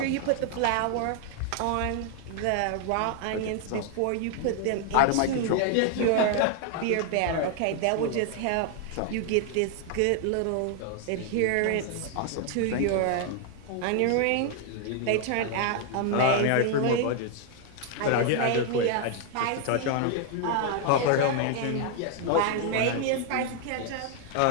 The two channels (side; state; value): both; different; correlation 0.00